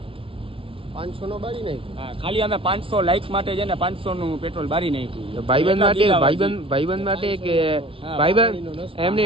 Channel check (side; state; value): left; late; 0.26 ms